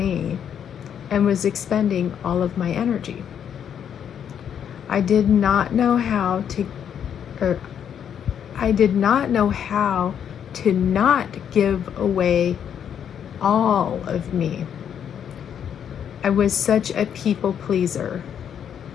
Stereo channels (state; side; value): quieter; right; 8.6 dB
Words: and was expending all of my energy. I did not know how to not give away all of me. I was such a people pleaser.